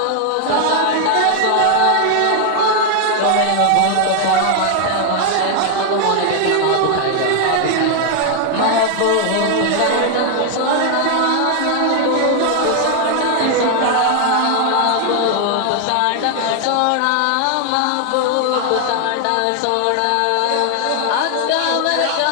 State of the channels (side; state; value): both; different; correlation 0.00